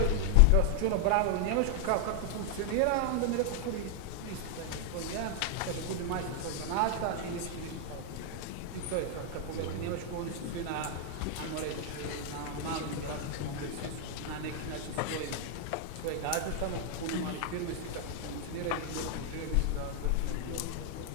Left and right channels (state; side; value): different; both; correlation 0.00